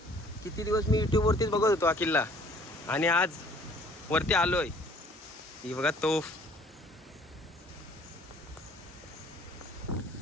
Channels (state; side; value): normal; both; correlation 0.55